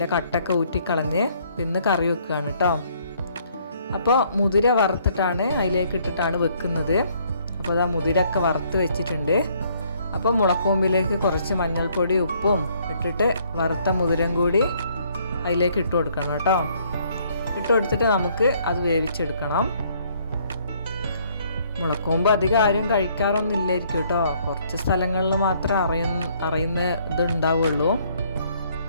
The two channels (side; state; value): both; inverted; correlation -0.65